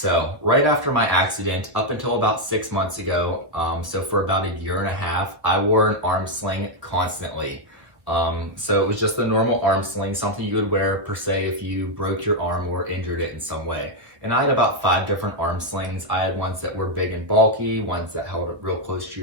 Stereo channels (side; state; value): left; late; 1.1 ms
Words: right after my accident, up until about 6 months ago, so for about a year and a half, I wore an arm sling constantly. So it was just a normal arm sling, something you would wear per se if you broke your arm or injured it in some way. And I had about 5 different arm slings. I had ones that were big and bulky, ones that held it real close to